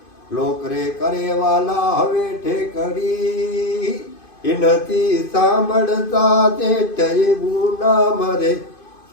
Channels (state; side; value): late; right; 2.5 ms